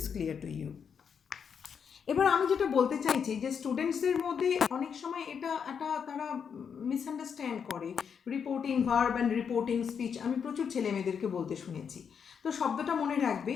clear to you. এবার আমি যেটা বলতে চাইছি যে স্টুডেন্টসদের মধ্যে অনেক সময় এটা তারা মিসআন্ডারস্ট্যান্ড করে reporting verb and reporting speech. আমি প্রচুর ছেলে মেয়েদেরকে বলতে শুনেছি। তো শব্দটা মনে রাখবে,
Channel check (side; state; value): right; quieter; 6.9 dB